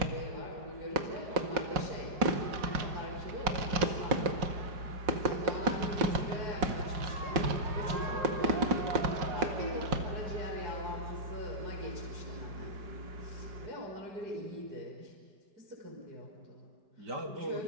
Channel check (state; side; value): late; left; 5.5 ms